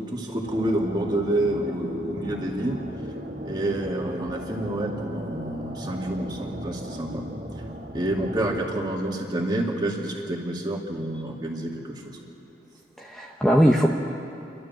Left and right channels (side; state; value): both; normal; correlation 0.77